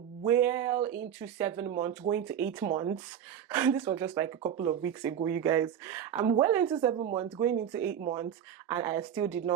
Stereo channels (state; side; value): quieter; left; 9.3 dB